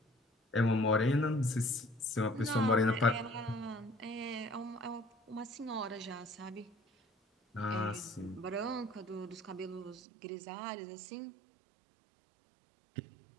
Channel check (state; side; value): drops out; left; at 10.0 s